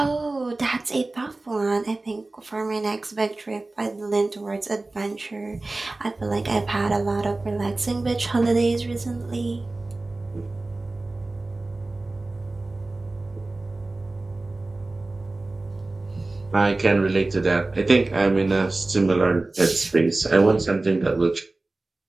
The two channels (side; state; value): left; quieter; 3.1 dB